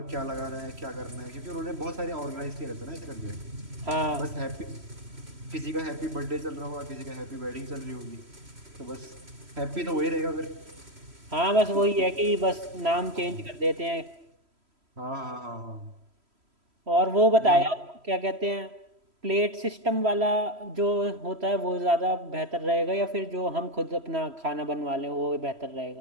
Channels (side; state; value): left; late; 3.1 ms